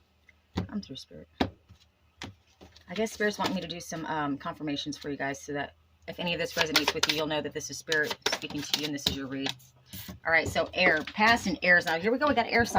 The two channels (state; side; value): identical; both; correlation 1.00